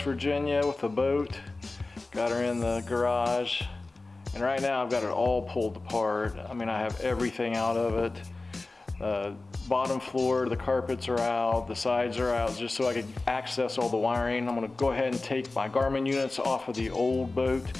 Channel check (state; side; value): quieter; right; 3.3 dB